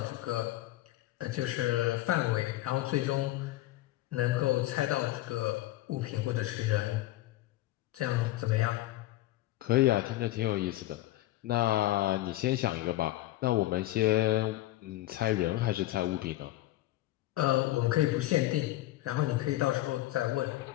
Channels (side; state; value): right; quieter; 16.2 dB